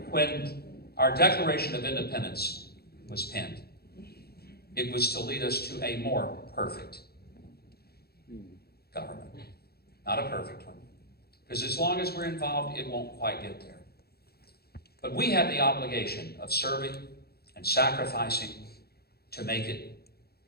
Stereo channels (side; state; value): right; late; 0.46 ms